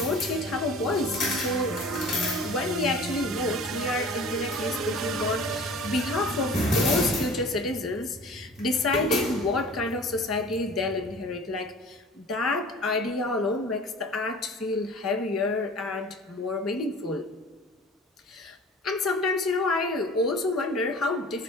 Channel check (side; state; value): both; normal; correlation 0.43